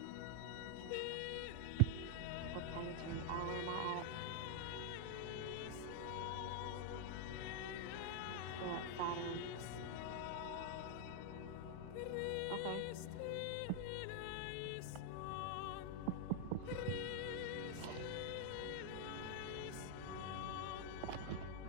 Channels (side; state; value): both; different; correlation 0.00